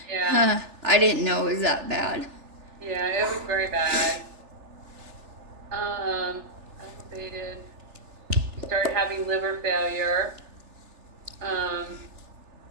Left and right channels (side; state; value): left; late; 3.4 ms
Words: Yeah. I didn't know it was that bad. Yeah, it was very bad. Elevated. You started having liver failure.